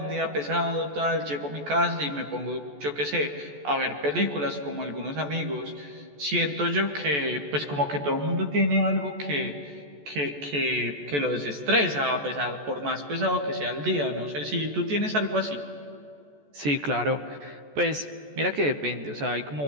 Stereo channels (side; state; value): left; late; 14 ms